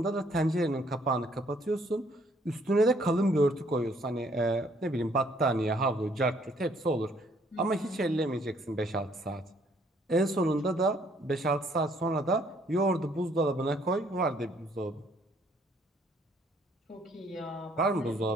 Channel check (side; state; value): both; normal; correlation 0.65